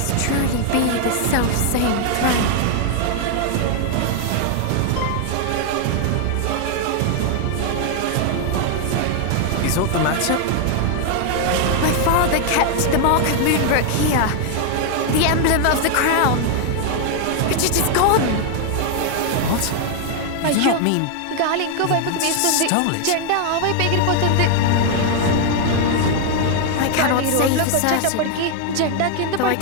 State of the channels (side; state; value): both; different; correlation 0.00